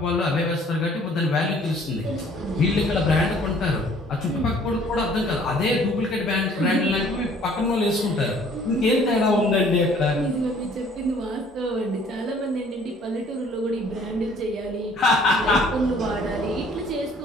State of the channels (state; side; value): normal; both; correlation 0.56